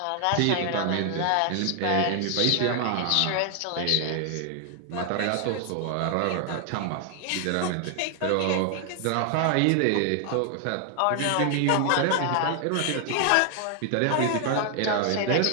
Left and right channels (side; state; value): both; different; correlation 0.00